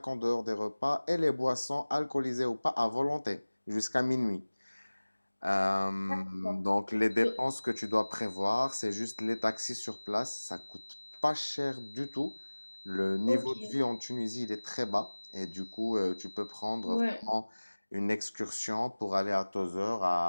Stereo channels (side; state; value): both; inverted; correlation -1.00